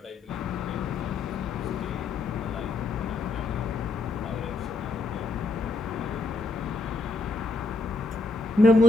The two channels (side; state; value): right; quieter; 3.7 dB